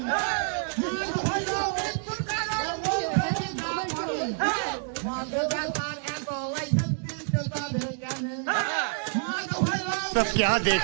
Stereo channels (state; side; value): silent; left; 59 dB below the other